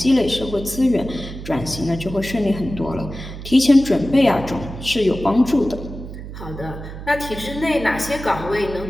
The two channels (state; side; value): noise; right; hum, 11 dB below the sound